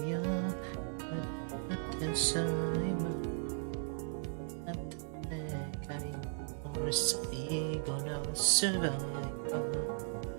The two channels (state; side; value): silent; left; digital silence